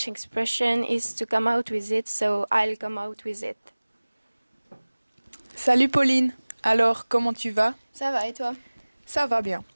expression is to come out with it, so I'll come out with it. Salut Pauline, alors comment tu vas? Ça va et toi? Ça va bien.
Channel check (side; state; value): both; inverted; correlation -1.00